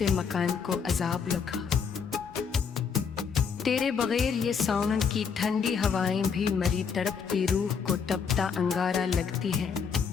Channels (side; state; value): right; quieter; 6.3 dB